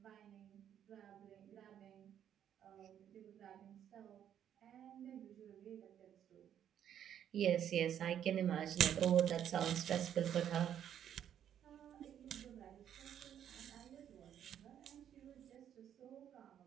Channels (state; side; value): quieter; left; 9.8 dB